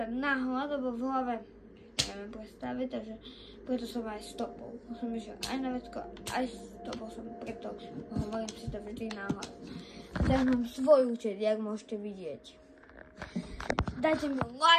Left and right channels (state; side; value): identical; both; correlation 1.00